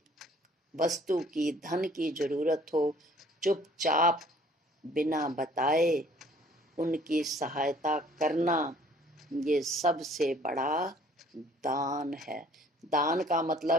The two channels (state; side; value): normal; both; correlation 0.56